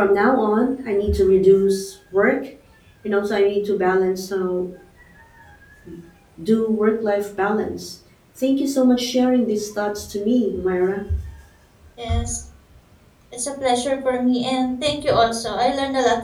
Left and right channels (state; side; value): identical; both; correlation 1.00